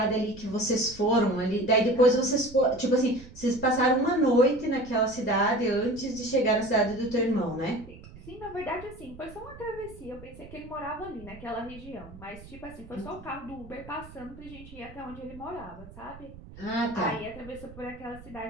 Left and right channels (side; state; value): right; noise; rumble, 17 dB below the sound